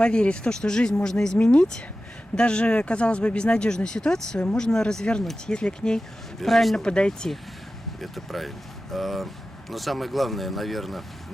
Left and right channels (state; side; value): normal; both; correlation 0.94